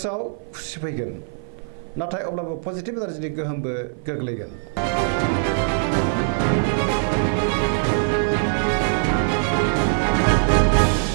खुसि फैगोन नाथाय अब्लाबो पजिटिभ एनार्जिनि गोहोमबो गोग्लैगोन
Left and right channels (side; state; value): left; silent; 55 dB below the other